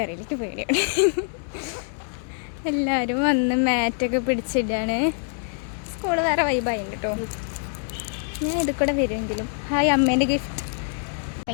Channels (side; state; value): right; silent; 62 dB below the other